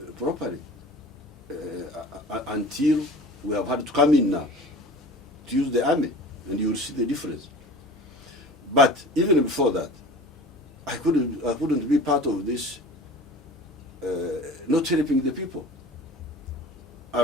properly until we have had to come in now to use the army, and you will see the difference. But even before that, I couldn't be part of this. Not helping the people.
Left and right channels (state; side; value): normal; both; correlation 0.39